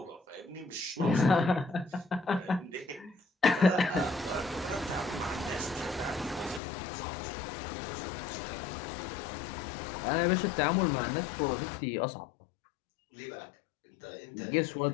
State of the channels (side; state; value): right; drops out; at 6.6 s